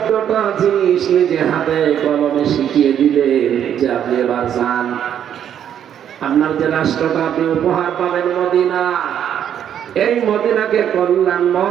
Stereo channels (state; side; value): quieter; left; 9.5 dB